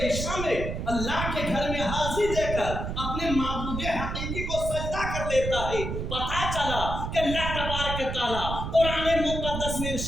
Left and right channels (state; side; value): noise; right; rumble, 4 dB below the sound